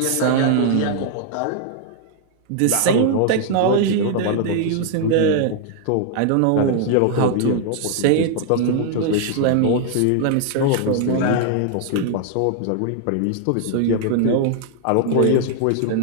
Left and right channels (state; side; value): different; both; correlation 0.00